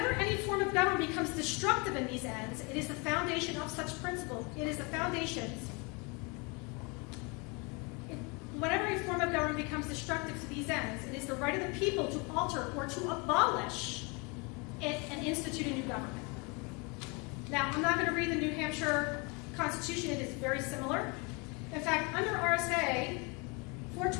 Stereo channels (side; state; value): right; quieter; 30.1 dB